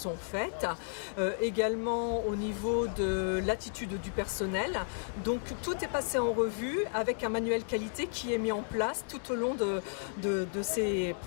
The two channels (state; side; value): silent; right; digital silence